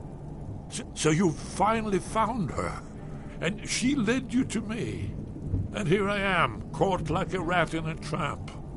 So you finally found her, and she led you to me. And here I am, caught like a rat in a trap.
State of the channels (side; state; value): both; identical; correlation 1.00